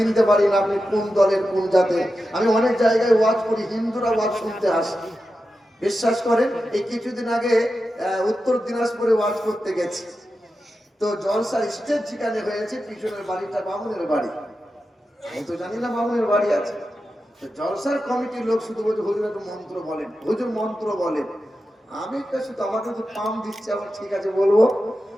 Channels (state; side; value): normal; both; correlation 0.91